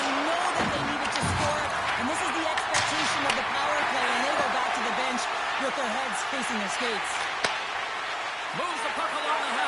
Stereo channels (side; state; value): both; identical; correlation 1.00